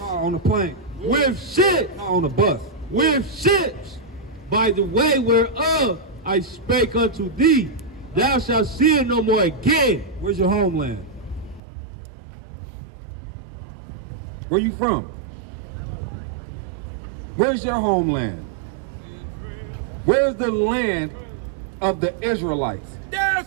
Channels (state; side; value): drops out; left; at 11.6 s